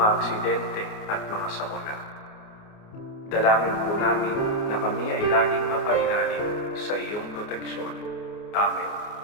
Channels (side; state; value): right; late; 29 ms